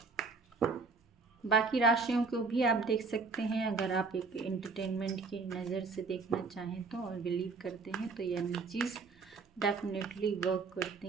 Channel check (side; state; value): left; quieter; 4.3 dB